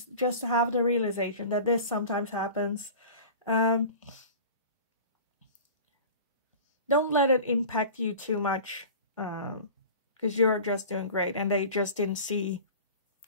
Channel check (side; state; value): both; inverted; correlation -0.38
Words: Just to have the realization that this sometimes happens. Don't let it impact you too much, because you're just doing great, and they just didn't see